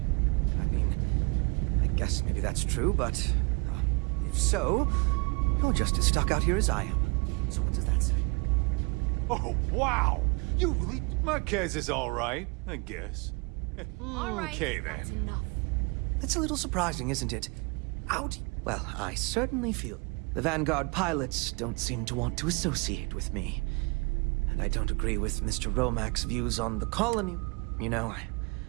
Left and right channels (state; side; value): quieter; left; 30.4 dB